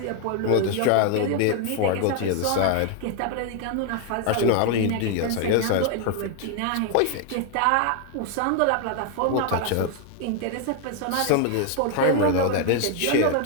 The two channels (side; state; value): both; different; correlation 0.00